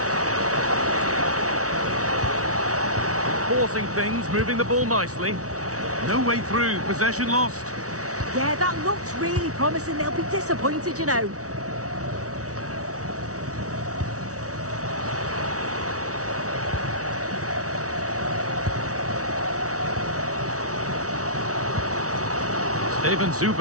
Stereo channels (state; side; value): late; left; 0.66 ms